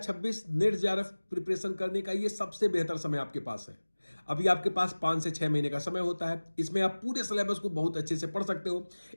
net JRF preparation करने का ये सबसे बेहतर समय आपके पास है। अभी आपके पास 5 से 6 महीने का समय होता है। इसमें आप पूरे सिलेबस को बहुत अच्छे से पढ़ सकते हो।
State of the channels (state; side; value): inverted; both; correlation -1.00